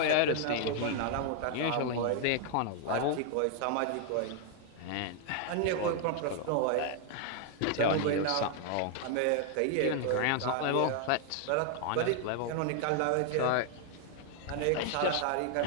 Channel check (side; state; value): both; different; correlation 0.00